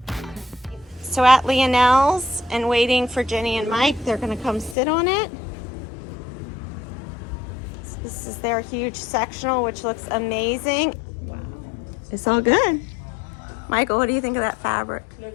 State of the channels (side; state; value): right; drops out; at 4.8 s